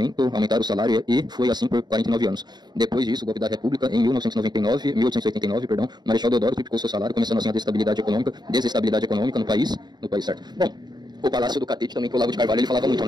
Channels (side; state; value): left; late; 0.20 ms